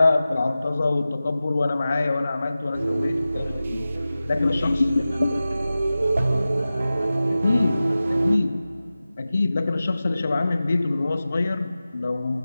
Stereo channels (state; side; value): inverted; both; correlation -0.95